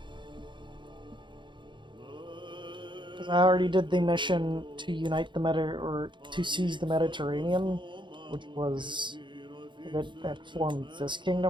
Because I already did the mission to unite the or to seize the Mediterranean, which was that formed this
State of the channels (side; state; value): left; late; 0.23 ms